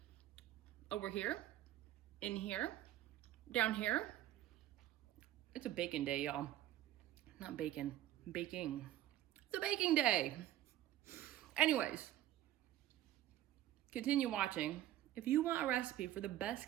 over here, in here, down here. It's a baking day, y'all. Not bacon, baking. It's a baking day. Anyways, continue watching. If you want a recipe for the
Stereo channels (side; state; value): left; quieter; 13.5 dB